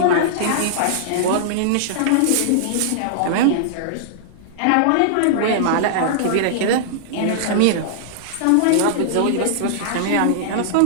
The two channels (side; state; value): both; different; correlation -0.01